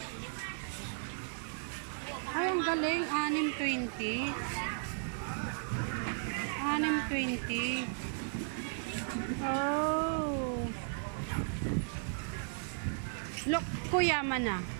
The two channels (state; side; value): silent; left; digital silence